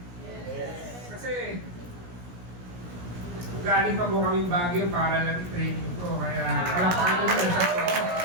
Yes. Kasi, galing pa po kaming Baguio para lang i-training ko. Kaya, wala pa kayo ng sa ko.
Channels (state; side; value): late; left; 17 ms